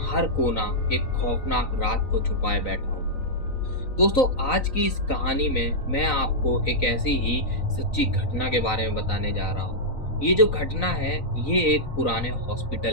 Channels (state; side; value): late; right; 3.9 ms